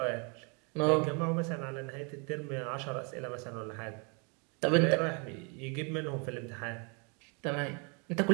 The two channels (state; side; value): quieter; left; 34.4 dB